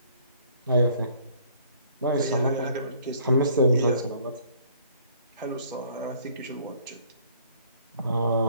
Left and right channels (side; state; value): both; inverted; correlation -0.59